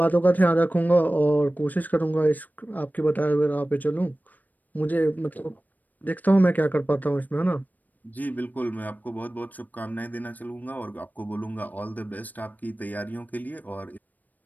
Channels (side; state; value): right; late; 0.083 ms